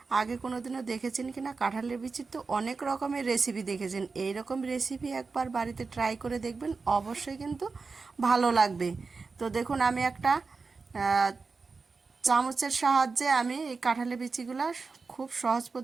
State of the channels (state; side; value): quieter; left; 4.4 dB